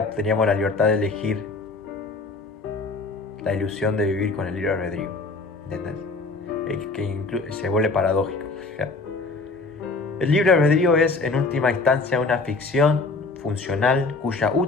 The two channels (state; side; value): quieter; right; 3.7 dB